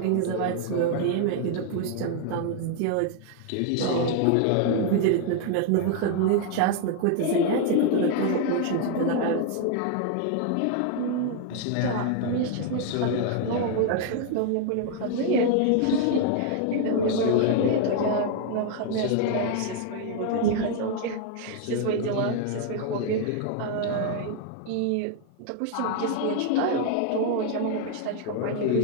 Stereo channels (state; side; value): different; both; correlation 0.00